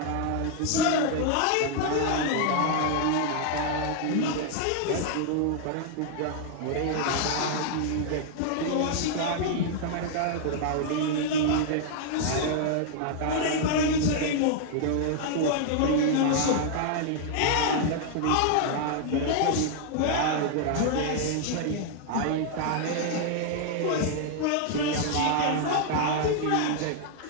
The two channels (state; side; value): different; both; correlation 0.00